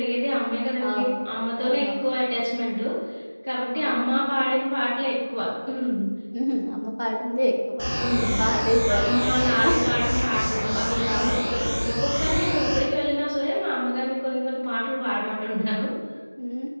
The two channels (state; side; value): inverted; both; correlation -1.00